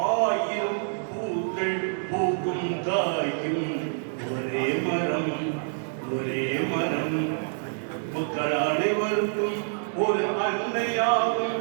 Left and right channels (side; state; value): left; silent; 60 dB below the other